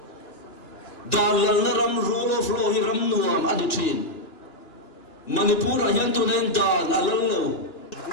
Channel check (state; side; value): late; right; 2.9 ms